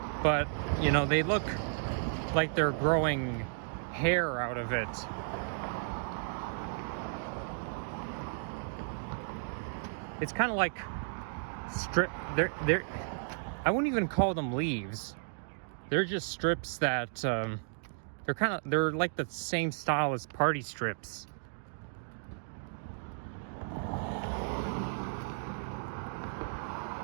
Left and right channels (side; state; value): left; silent; digital silence